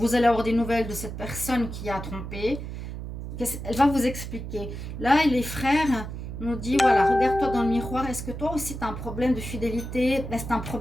allez avoir des nouvelles de cette personne qui a trompé. Elle va vous expliquer. Là, les frères nous disent, voilà, regarde-toi dans le miroir. Est-ce que toi aussi, tu as un problème de fidélité? Est-ce que tu as un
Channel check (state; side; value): noise; right; hum, 8 dB below the sound